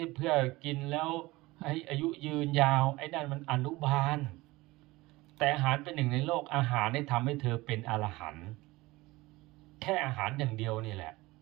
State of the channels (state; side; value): quieter; left; 20.4 dB